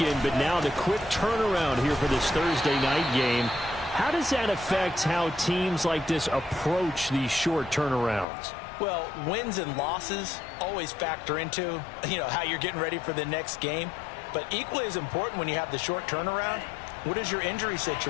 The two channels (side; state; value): right; drops out; at 8.2 s